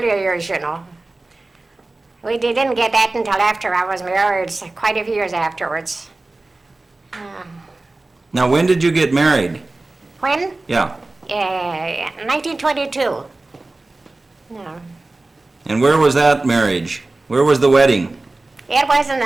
years, you know. We didn't get that until after I was married, so quite a few years afterwards. Now, when did you get married? When? Yeah. 1922. Yeah. And where was that marriage? Where was the wedding? It was in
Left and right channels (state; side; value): quieter; left; 3.1 dB